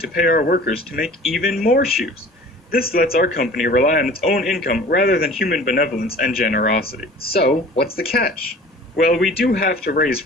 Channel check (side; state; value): both; normal; correlation 0.44